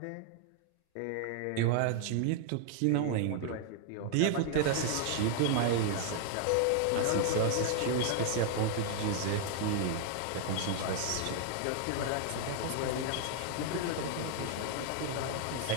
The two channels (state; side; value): different; both; correlation 0.00